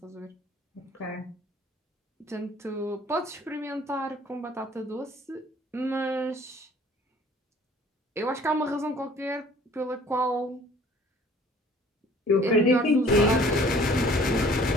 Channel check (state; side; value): normal; both; correlation 0.53